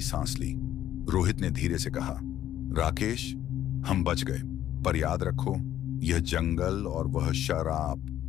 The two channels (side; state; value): right; quieter; 11.9 dB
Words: सांस ली। रोहित ने धीरे से कहा, राकेश, हम बच गए, पर याद रखो, यह जंगल और वह